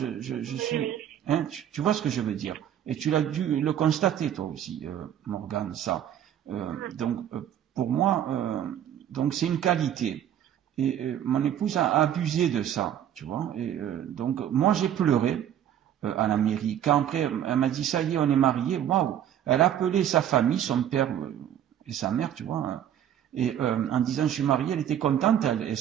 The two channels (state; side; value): quieter; left; 10.4 dB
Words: suis, hein, tu vois ce que je veux dire. Et tu l'as dû le constater toi aussi, Morgane, ça. Donc pour moi, donc c'est une qualité. Et mon épouse a abusé de ça, tu vois. Et donc moi j'ai pleuré à la mairie. Quand après, elle m'a dit, ça y est, on est mariés, waouh! Elle a appelé sa famille, son père et sa mère, tu vois, hein, et en disant, je suis mariée, elle était contente, elle et